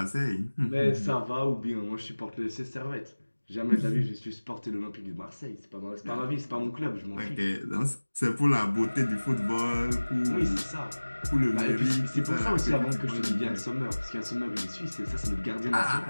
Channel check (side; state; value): both; inverted; correlation -1.00